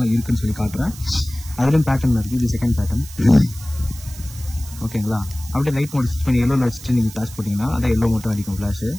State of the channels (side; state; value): right; noise; hiss, 17 dB below the sound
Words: இருக்குன்னு சொல்லி காட்டுறேன். அதுலேயும் பேட்டர்ன் இருக்குது. இது செகண்ட் பேட்டர்ன். ஓகேங்களா? அப்படியே லைட் மோட் ஸ்விட்ச் பண்ணி எல்லோவில் வச்சுட்டு நீங்கள் ஃப்ளாஷ் போட்டிங்கன்னா அதான் எல்லோ மட்டும் அடிக்கும் ஃப்ளாஷு.